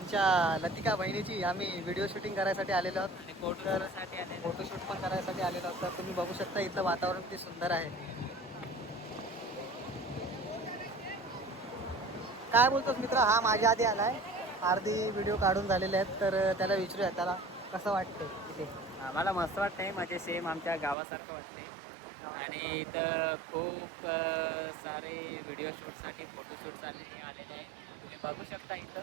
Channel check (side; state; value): left; drops out; at 21.0 s